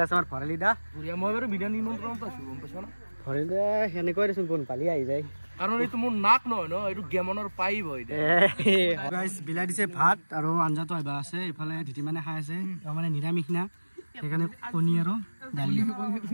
আছে আমাৰ ভৰালি দা বুঢ়িয়া মই বাৰু বিধান নিমন্ত্ৰণ পাইছোঁ গম পাইছ না ভৰালি দা সেনেকৈ দেচোন কোন পালি আহি যায় কাৰণ এইটো মোৰ নাক নহয় ন এইটো গেমনৰ পাইব গাইছ বিলাই দিছে ভাত আৰু আঞ্জাটো আহিবা আছে ইফালে ধিতি মানে খাই আছে মানে নিৰামিষ না সেইকাৰণে কণী আৰু দালি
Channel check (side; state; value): both; inverted; correlation -1.00